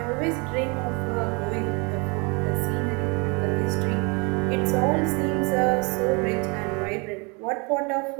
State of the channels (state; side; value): quieter; left; 31.0 dB